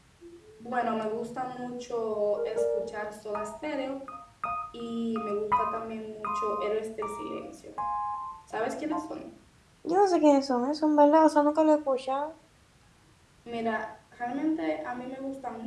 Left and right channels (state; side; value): identical; both; correlation 1.00